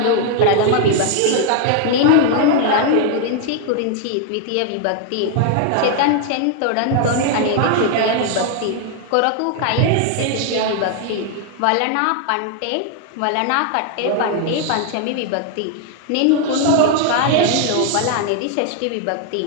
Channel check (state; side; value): different; both; correlation 0.00